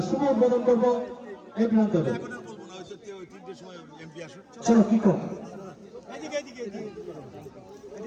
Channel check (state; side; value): identical; both; correlation 1.00